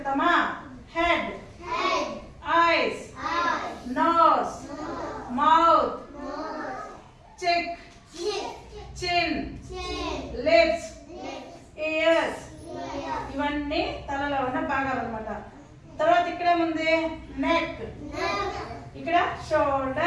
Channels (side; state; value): both; identical; correlation 1.00